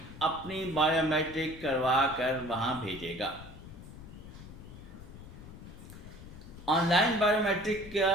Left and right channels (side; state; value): left; noise; rumble, 15 dB below the sound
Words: اپنی بایو میٹرک کروا کر وہاں بھیجے گا۔ آن لائن بایو میٹرک